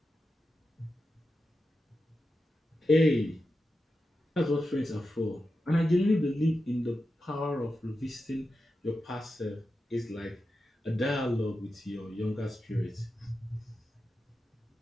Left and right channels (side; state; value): both; normal; correlation 0.90